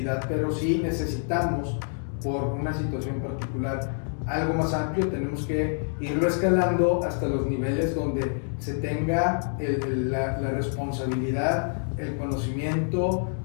pero sí necesitamos, por una situación particular, algo más amplio. Tenemos que irlo escalando hasta los niveles donde se tenga la responsabilidad, el conocimiento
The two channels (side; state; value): right; silent; digital silence